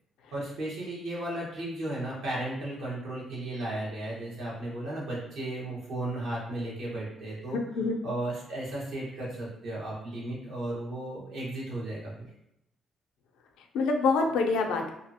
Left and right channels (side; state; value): both; normal; correlation 0.68